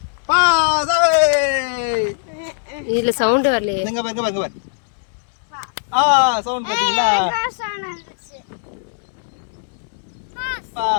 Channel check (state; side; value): silent; right; 66 dB below the other